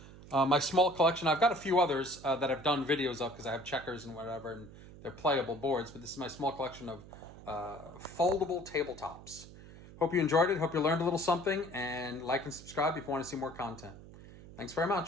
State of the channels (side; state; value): right; noise; hum, 17 dB below the sound